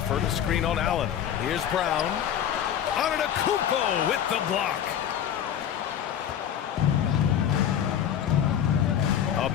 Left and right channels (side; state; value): right; quieter; 9.6 dB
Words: a screen on Allen. Here's Brown. Antetokounmpo with the block. A